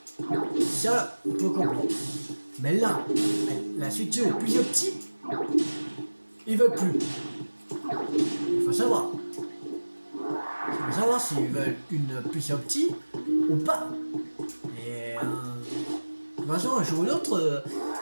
ça, on peut comprendre. Mais là, la Switch 2 est plus opti, ils veulent plus. Il faut savoir. Il faut savoir s'ils veulent une plus opti ou pas. Et de toute façon, un jour ou l'autre,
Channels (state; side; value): inverted; both; correlation -1.00